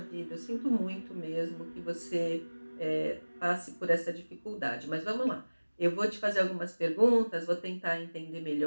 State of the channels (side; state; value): both; inverted; correlation -1.00